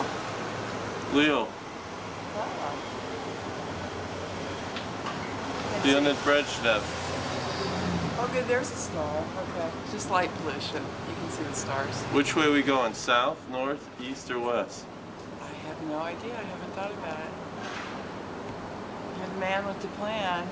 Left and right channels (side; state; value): both; identical; correlation 1.00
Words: Leo. Leonid Brezhnev. Oh, good, there's a star. Okay. It's just light pollution. You can see the stars. Which way are we going? South, north, east, or west? I have no idea. I haven't thought about it. You're the man with the plan.